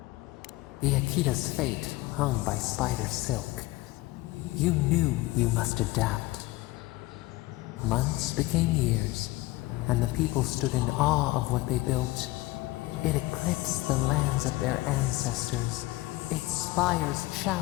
The Akita's fate hung by spider silk. You knew you must adapt. Months became years, and the people stood in awe of what they built. It eclipsed the lands of their ancestors. Its spires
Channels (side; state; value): right; quieter; 19.2 dB